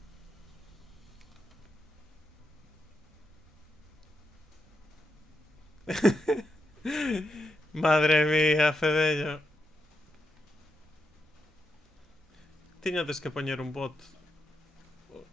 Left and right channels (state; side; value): normal; both; correlation 0.85